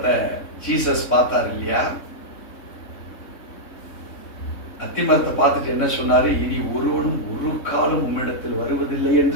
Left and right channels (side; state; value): right; late; 3.6 ms